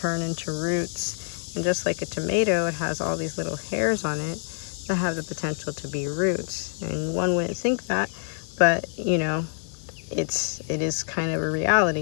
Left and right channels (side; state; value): right; silent; 55 dB below the other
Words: into roots. And just like a tomato, it has all these little hairs on it that have the potential to be roots. And one wouldn't think that, but you know, it is kind of a